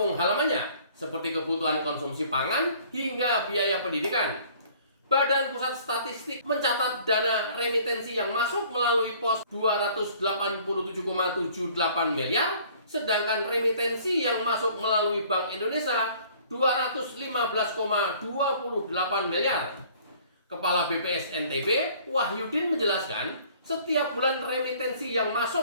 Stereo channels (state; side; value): inverted; both; correlation -0.54